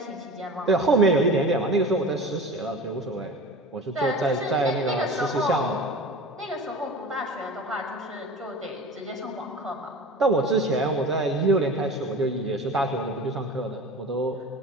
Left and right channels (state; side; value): normal; both; correlation 0.36